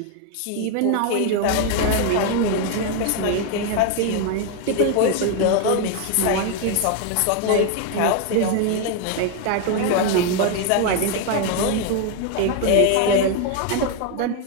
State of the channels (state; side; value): different; both; correlation 0.01